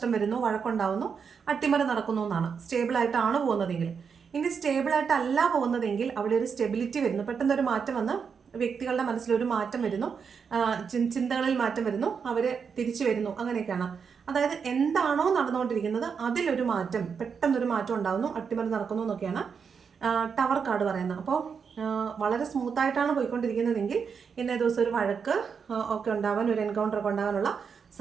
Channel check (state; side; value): quieter; left; 6.3 dB